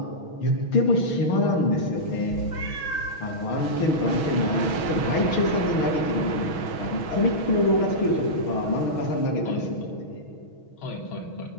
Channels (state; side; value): late; right; 6.3 ms